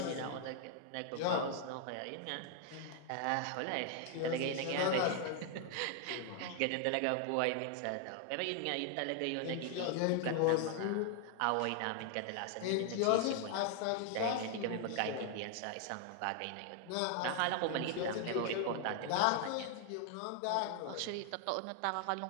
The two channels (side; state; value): both; different; correlation 0.00